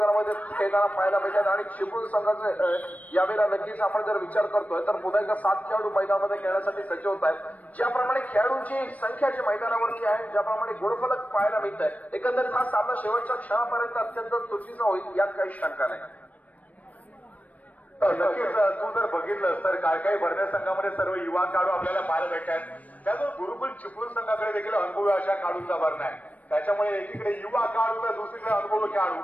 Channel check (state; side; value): late; right; 0.072 ms